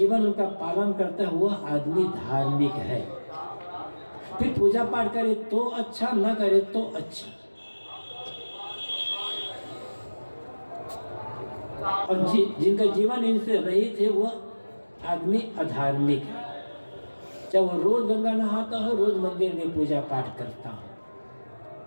उनका पालन करता है, वह आदमी धार्मिक है। फिर पूजा पाठ करे तो अच्छा, न करे तो अच्छा। और जिनका जीवन इनसे रहित है वह आदमी अधार्मिक है। चाहे वो रोज गंगा नहाता हो, रोज मंदिर में पूजा पाठ करता हो।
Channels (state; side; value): inverted; both; correlation -1.00